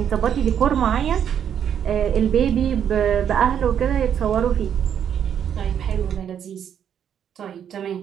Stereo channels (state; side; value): quieter; left; 8.8 dB